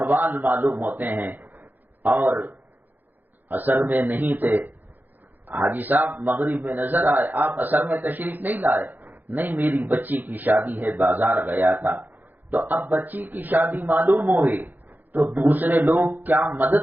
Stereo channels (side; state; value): left; late; 0.085 ms